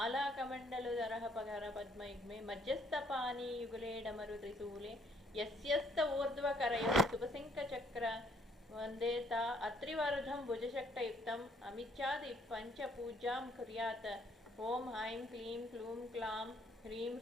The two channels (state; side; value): normal; both; correlation 0.65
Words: कमंडलुधरः पगर पद्मयुग्मे मध्यस्थपानी युगले डमरु त्रिशूले यस्यस्त ऊर्ध्वकरयोः सुपसिंकचक्र वंदे ता अत्रिवरुधं भुजशक्तयुक्तम् अमिच्छादि पंचपूजां कुर्यात्। ओम ऐं क्लीं क्लूं क्लां ह्रीं